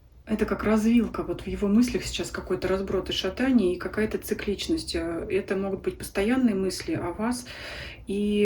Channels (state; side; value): identical; both; correlation 1.00